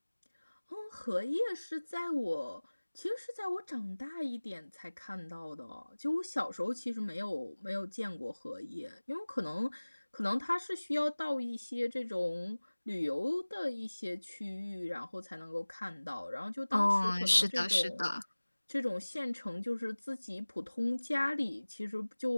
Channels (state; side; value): inverted; both; correlation -1.00